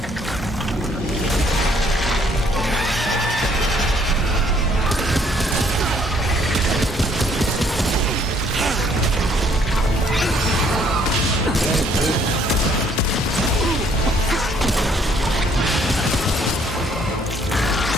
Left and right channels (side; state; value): both; normal; correlation 0.64